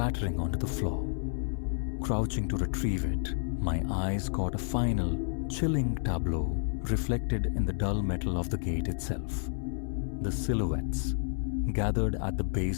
onto the floor. Crouching to retrieve it, my eyes caught a final, chilling tableau reflected in the dull metal of the gate itself. The silhouettes, gathered at the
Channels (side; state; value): right; silent; 57 dB below the other